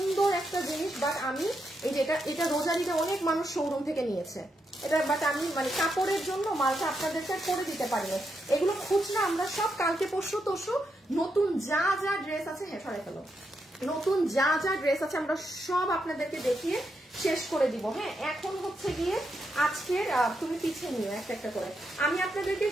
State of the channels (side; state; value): both; normal; correlation 0.82